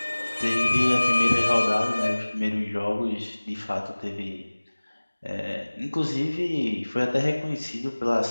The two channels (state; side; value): inverted; both; correlation -1.00